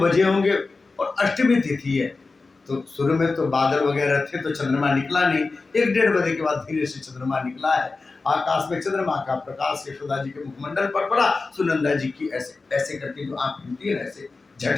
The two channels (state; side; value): quieter; right; 3.9 dB